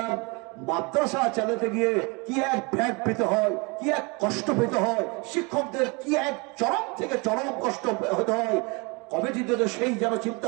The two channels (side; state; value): left; quieter; 29.0 dB